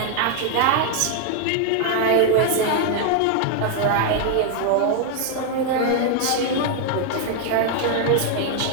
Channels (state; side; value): different; both; correlation 0.00